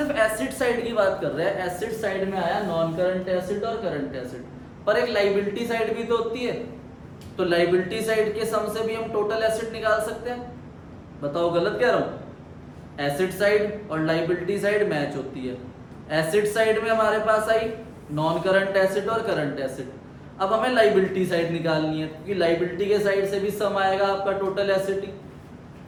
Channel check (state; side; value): identical; both; correlation 1.00